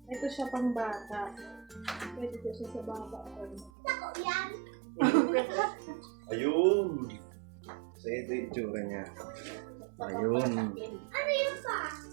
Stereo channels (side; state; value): left; drops out; at 3.7 s